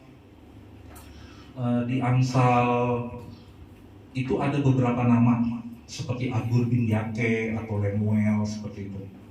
itu ada beberapa nama seperti Agur bin Yake atau Lemuel seperti itu.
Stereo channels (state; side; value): identical; both; correlation 1.00